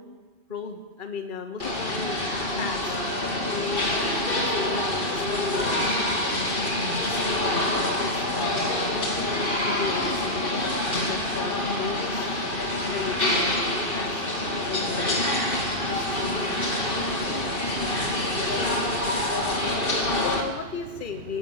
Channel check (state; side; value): late; left; 2.5 ms